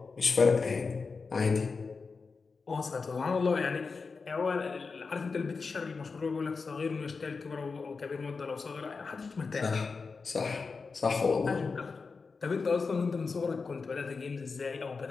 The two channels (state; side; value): quieter; right; 4.6 dB